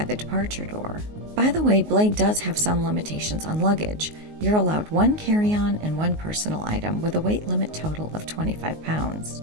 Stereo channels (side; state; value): left; late; 19 ms